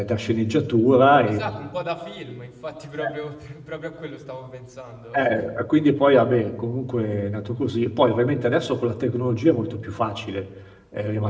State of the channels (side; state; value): both; identical; correlation 1.00